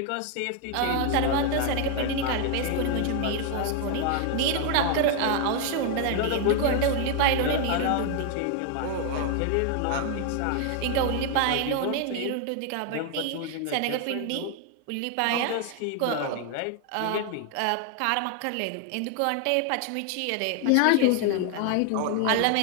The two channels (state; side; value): different; both; correlation 0.01